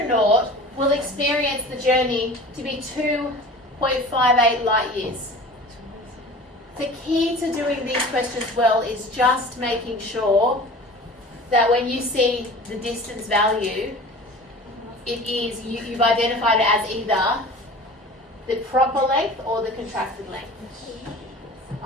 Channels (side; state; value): both; normal; correlation 0.40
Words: will experience the journey to be 2.58 light years. The key to doing these questions well is just making sure that when you see the distance value, you've identified it as either the proper length or the contracted length.